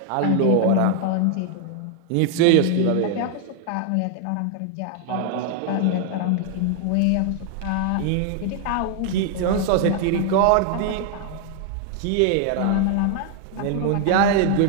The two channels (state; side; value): different; both; correlation 0.00